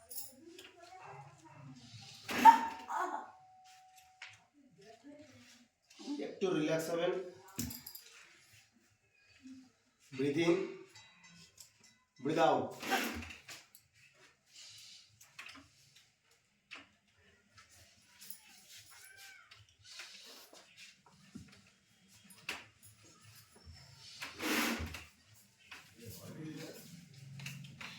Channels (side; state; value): both; identical; correlation 1.00